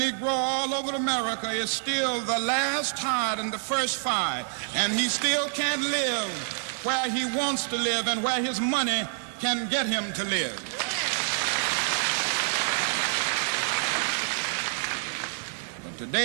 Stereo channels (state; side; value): silent; left; digital silence